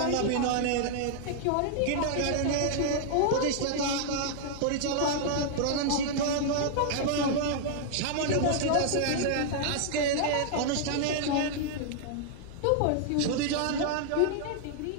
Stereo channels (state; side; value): different; both; correlation 0.00